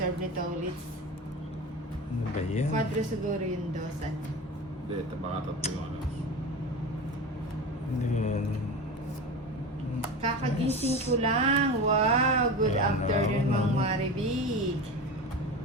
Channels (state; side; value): normal; both; correlation 0.28